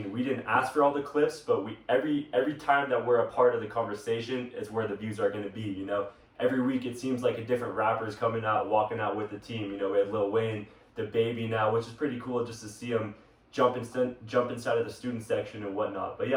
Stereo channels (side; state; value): both; identical; correlation 1.00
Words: we didn't ask for all the clips, but we every time that we're a part of the conversation is where the views are going to be. You know, every week it seems like a different rapper is coming out, walking out with the team. You know, we had Lil Wayne, the Baby now, which is pretty cool just to see him jump inside of the student section and whatnot. But